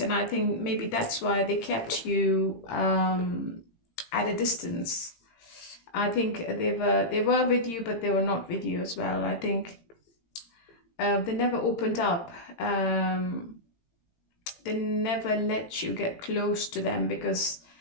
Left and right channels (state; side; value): late; right; 18 ms